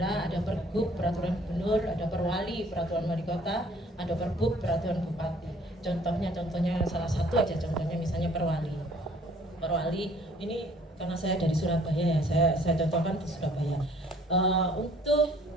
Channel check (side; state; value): both; normal; correlation 0.58